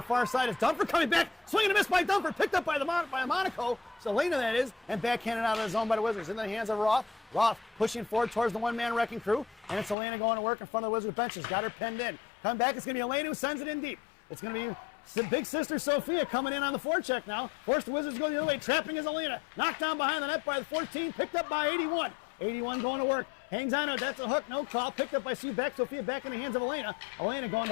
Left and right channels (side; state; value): right; drops out; at 10.0 s